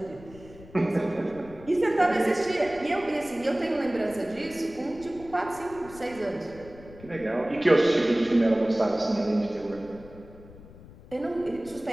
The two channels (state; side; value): noise; left; rumble, 19 dB below the sound